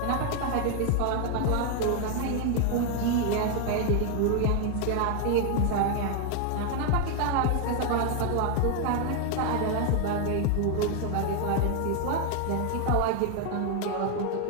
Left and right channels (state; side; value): different; both; correlation 0.01